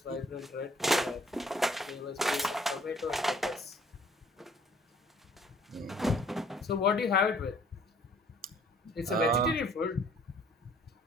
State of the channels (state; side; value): normal; both; correlation 0.58